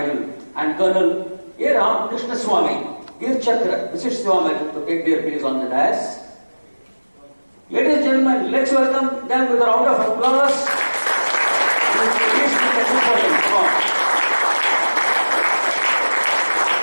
and Colonel A. Ram Krishna Swami, Veer Chakra, Visit Siva Medal, to take their place on the dais. Ladies and gentlemen, let's welcome them with a round of applause.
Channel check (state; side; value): inverted; both; correlation -1.00